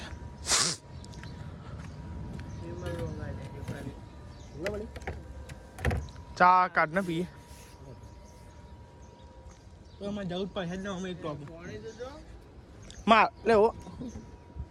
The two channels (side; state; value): both; identical; correlation 1.00